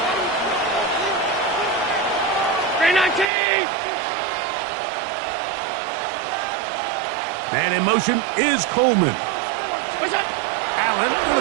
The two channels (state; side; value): drops out; left; at 3.2 s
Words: Green 19. Man in motion is Coleman. What's that? Allen with